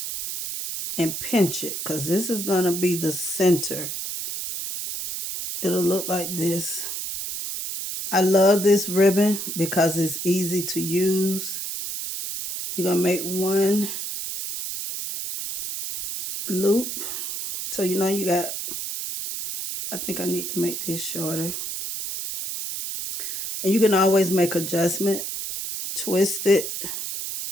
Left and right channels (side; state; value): right; noise; hiss, 5 dB below the sound